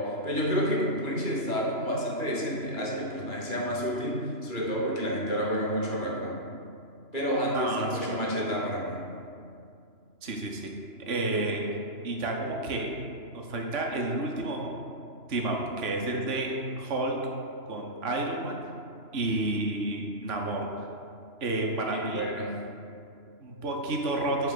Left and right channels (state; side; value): late; left; 3.0 ms